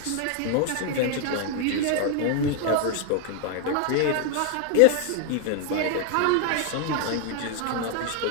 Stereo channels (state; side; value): different; both; correlation 0.00